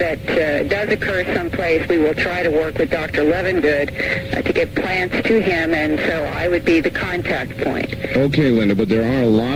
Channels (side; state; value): both; identical; correlation 1.00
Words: does occur someplace. We will try to work with Dr. Levengood to get plants to him, and so I would be the contact point. Okay, Linda, but there are a lot